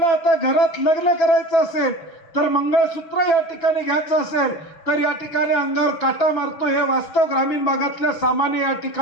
आता घरात लग्न करायचं असेल तर मंगळसूत्र या ठिकाणी घ्यायचं असेल तर या ठिकाणी अंगावर काटा मारतो। हे वास्तव ग्रामीण भागातल्या सामान्य या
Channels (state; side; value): late; right; 6.0 ms